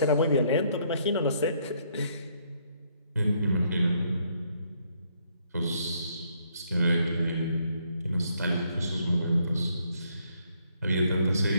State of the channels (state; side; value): inverted; both; correlation -0.70